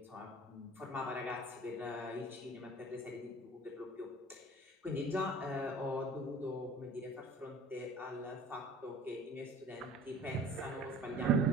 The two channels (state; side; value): normal; both; correlation 0.45